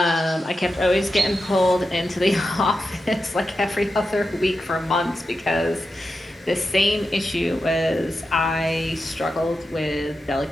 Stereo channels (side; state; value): both; normal; correlation 0.89